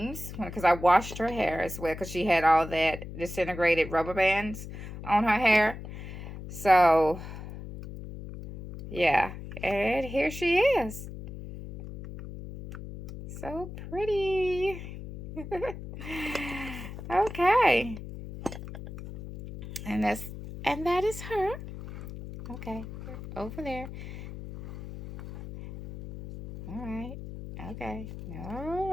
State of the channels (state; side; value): noise; left; hum, 11 dB below the sound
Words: because I washed her hair as well because she had all that disintegrated rubber bands on her hair. So, yeah. And here she is. So pretty. Okay. And that is her. Okay. Over there. All right. Okay. All